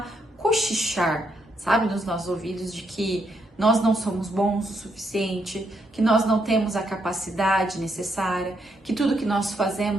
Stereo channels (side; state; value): both; normal; correlation 0.77